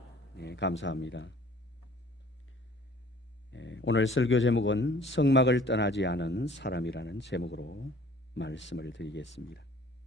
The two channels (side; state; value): both; normal; correlation 0.53